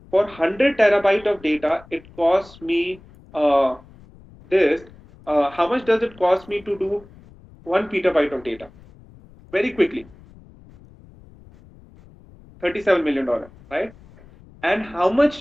For 100 terabyte of data, it costs me this. How much does it cost me to do 1 petabyte of data? Very quickly, $37 million, right? And how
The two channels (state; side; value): noise; left; rumble, 24 dB below the sound